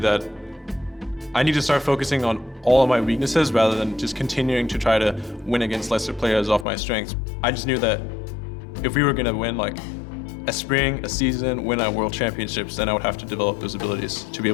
I need to start focusing on all of my weaknesses rather than just continuing to try to win against lesser players off my strengths. I just knew that if we were gonna win like a spring, a season, win at world championships, then I would have to develop those abilities to be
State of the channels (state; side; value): drops out; right; at 6.7 s